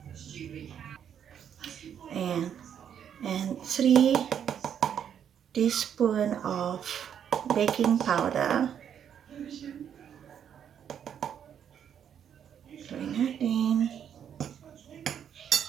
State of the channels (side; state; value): left; quieter; 8.7 dB